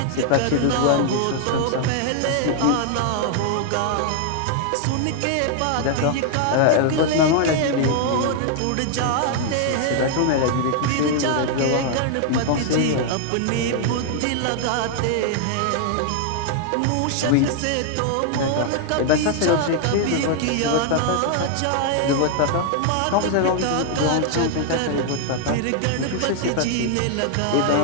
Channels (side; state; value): both; different; correlation 0.00